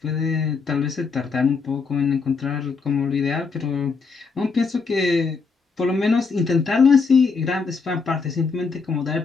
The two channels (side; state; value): right; quieter; 4.8 dB